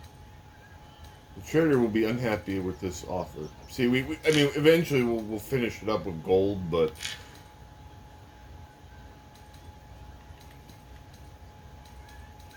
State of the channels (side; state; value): both; identical; correlation 1.00